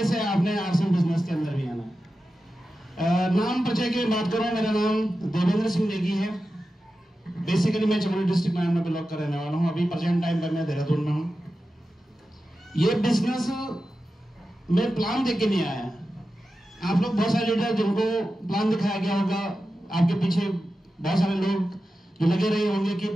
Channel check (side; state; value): both; normal; correlation 0.92